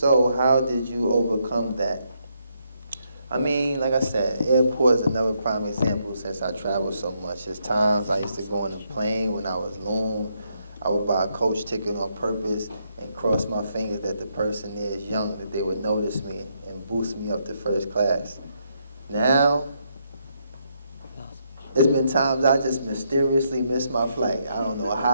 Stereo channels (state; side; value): inverted; both; correlation -0.76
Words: how did you overcome that? I mean, like I said, airport is another prime example since I travel so much. There's times I used to go on a plane when I was Loon. I would buy a coach ticket on purpose and cross my fingers that the person there is young, that they would notice me and boost me up to first class. Now, It's been times I just mysteriously missed my flight. I don't know